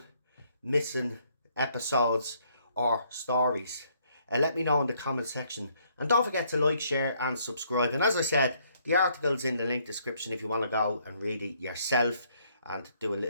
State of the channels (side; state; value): both; inverted; correlation -0.68